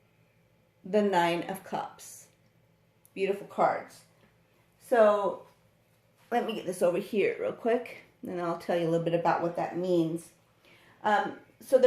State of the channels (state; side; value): identical; both; correlation 1.00